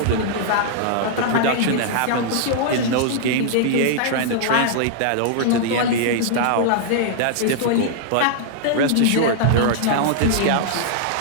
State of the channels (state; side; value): different; both; correlation -0.01